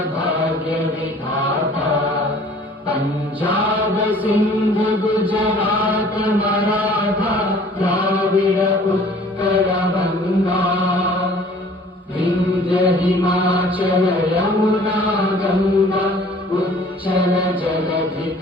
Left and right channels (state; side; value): normal; both; correlation 0.52